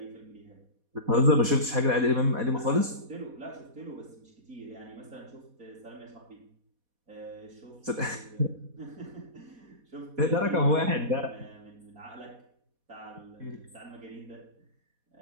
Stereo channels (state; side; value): late; left; 4.1 ms